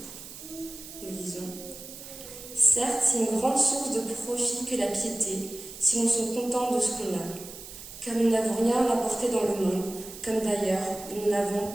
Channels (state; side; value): noise; right; hiss, 14 dB below the sound